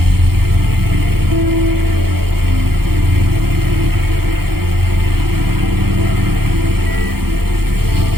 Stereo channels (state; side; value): late; left; 0.95 ms